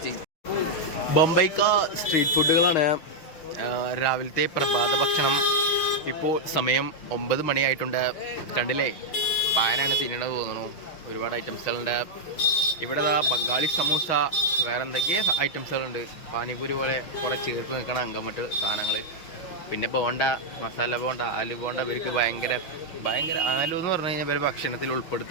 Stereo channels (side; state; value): right; late; 6.2 ms